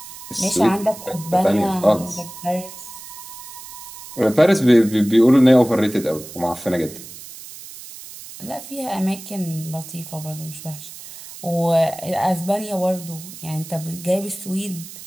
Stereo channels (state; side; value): noise; right; hiss, 15 dB below the sound